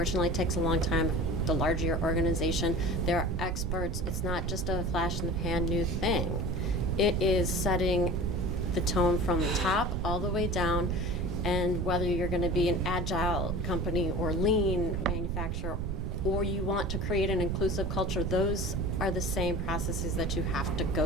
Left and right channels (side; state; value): right; noise; rumble, 2 dB below the sound